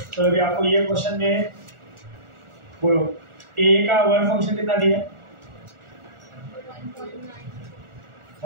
तो अभी आपको ये question में बोलो A का work function कितना दिया है,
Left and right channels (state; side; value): late; left; 1.4 ms